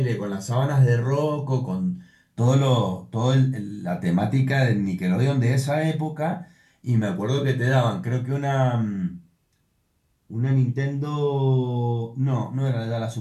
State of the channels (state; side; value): identical; both; correlation 1.00